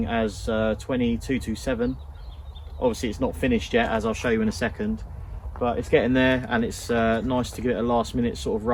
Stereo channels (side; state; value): both; identical; correlation 1.00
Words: as 20227. Obviously it's not finished yet, as I'll show you in a second, but it's getting there, and it's nice to give it a last minute sort of